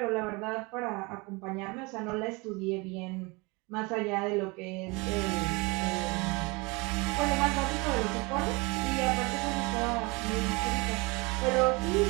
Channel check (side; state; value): left; quieter; 26.8 dB